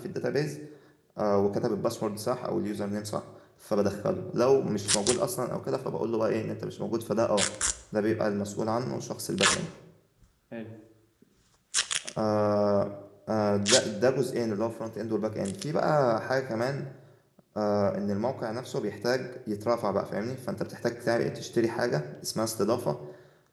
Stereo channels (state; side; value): identical; both; correlation 1.00